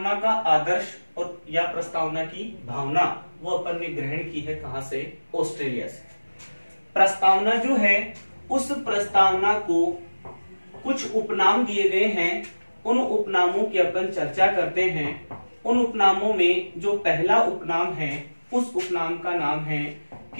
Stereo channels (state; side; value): inverted; both; correlation -1.00